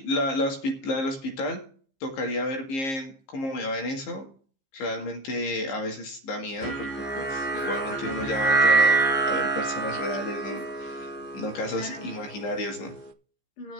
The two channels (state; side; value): late; right; 15 ms